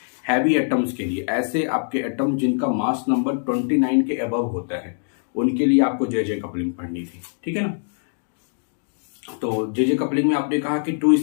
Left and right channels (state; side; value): silent; right; digital silence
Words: हैवी एटम्स के लिए, ऐसे आपके एटम जिनका मास नंबर 29 के अबव होता है, उनके लिए आपको जेजे कपलिंग पढ़नी थी। ठीक है ना। तो जेजे कपलिंग में आपने कहा कि 2